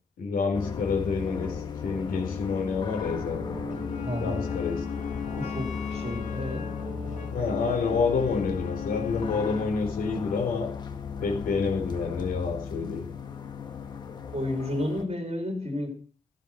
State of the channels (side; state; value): right; quieter; 4.3 dB